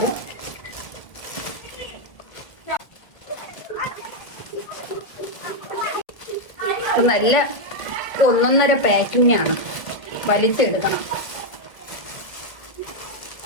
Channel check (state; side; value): late; right; 1.5 ms